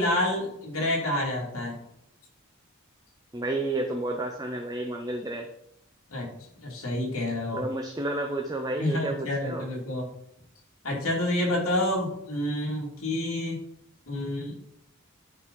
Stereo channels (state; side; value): normal; both; correlation 0.34